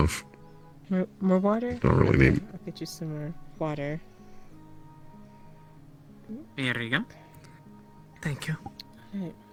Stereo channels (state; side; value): identical; both; correlation 1.00